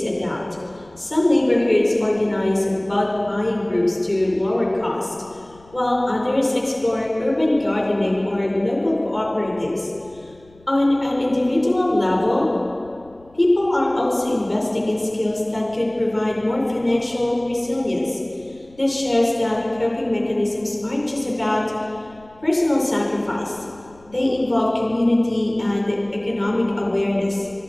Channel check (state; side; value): noise; left; rumble, 27 dB below the sound